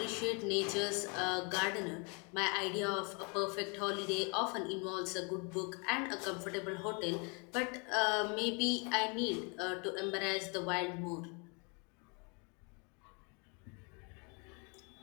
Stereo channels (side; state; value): right; quieter; 33.6 dB